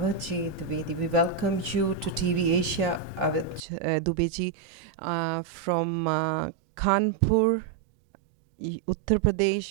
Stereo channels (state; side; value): drops out; left; at 3.6 s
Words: Dubey. We welcome you to TV Asia, Awadh Dubey ji, from Kanpur, Uttar